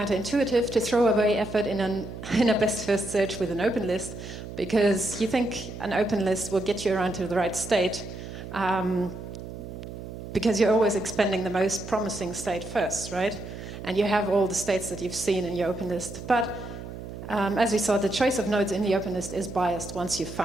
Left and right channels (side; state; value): right; noise; hum, 11 dB below the sound